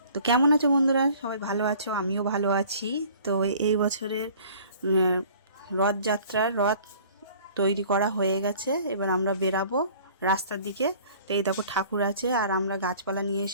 তো কেমন আছো বন্ধুরা? সবাই ভালো আছো? আমিও ভালো আছি। তো এই বছরের রথযাত্রার রথ তৈরি করা হয়ে গেছে। এবার আমরা বেরাবো রাস্তার দিকে। তো এই দেখো ঠাকুর আছে, আর আমরা গাছপালা নিয়ে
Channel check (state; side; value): inverted; both; correlation -0.51